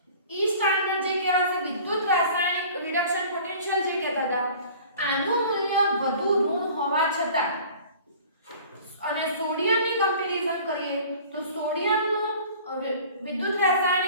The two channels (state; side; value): inverted; both; correlation -0.46